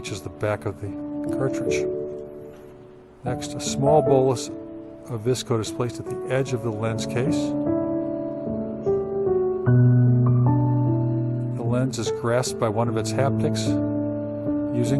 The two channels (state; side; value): identical; both; correlation 1.00